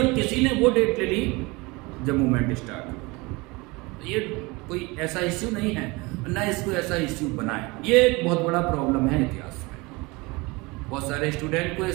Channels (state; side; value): quieter; left; 24.7 dB